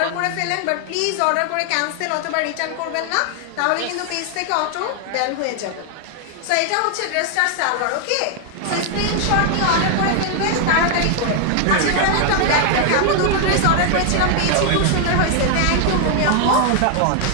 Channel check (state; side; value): different; both; correlation 0.00